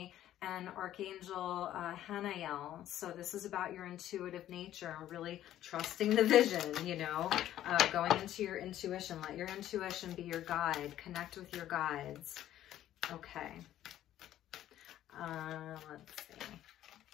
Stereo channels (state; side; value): quieter; right; 12.5 dB